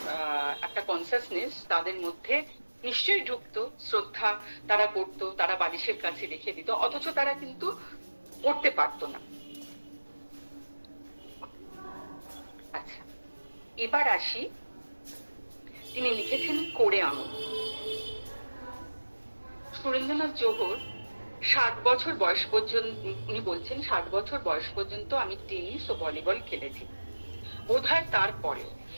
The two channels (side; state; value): both; inverted; correlation -1.00